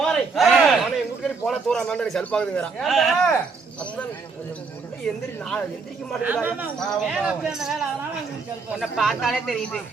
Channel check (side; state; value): left; quieter; 4.7 dB